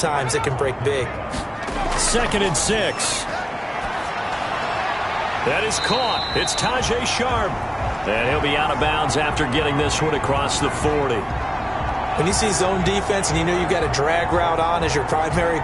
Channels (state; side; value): identical; both; correlation 1.00